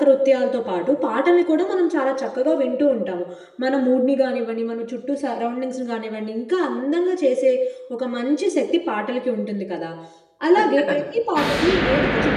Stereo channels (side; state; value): both; identical; correlation 1.00